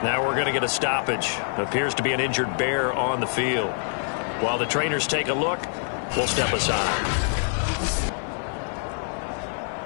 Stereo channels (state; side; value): silent; right; 58 dB below the other